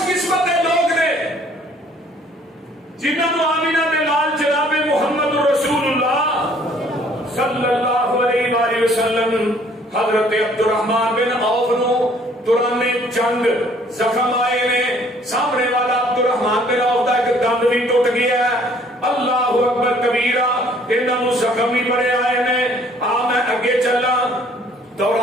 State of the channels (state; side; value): normal; both; correlation 0.59